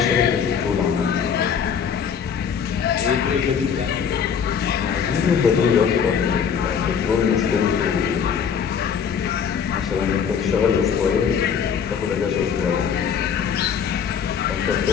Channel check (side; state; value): right; quieter; 7.2 dB